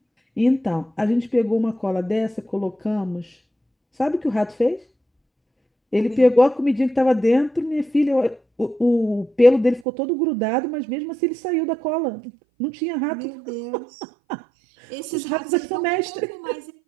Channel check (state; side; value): drops out; left; at 9.9 s